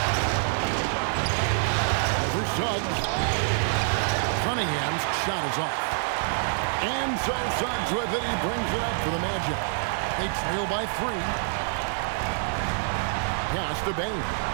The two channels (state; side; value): silent; left; digital silence